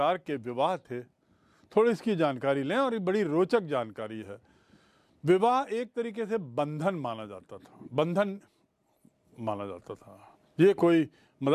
के विवाह थे? थोड़ी इसकी जानकारी लें, और ये बड़ी रोचक जानकारी है। विवाह एक तरीके से बंधन माना जाता था। ये कोई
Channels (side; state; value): both; identical; correlation 1.00